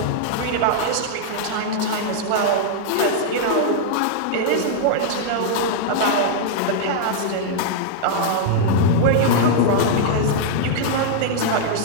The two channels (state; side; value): different; both; correlation -0.01